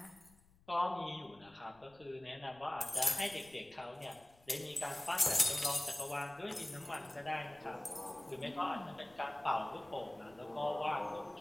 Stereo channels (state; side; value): noise; left; rumble, 28 dB below the sound